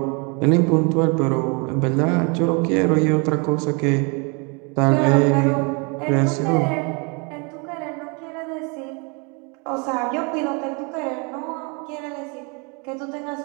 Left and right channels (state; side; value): quieter; left; 32.8 dB